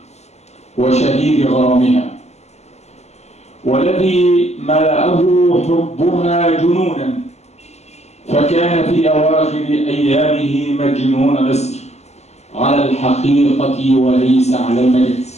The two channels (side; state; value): right; late; 0.32 ms